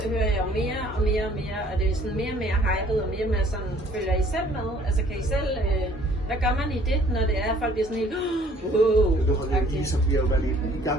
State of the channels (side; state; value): both; normal; correlation 0.58